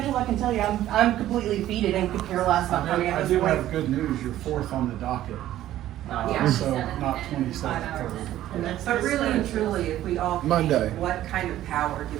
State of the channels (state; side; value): quieter; left; 13.4 dB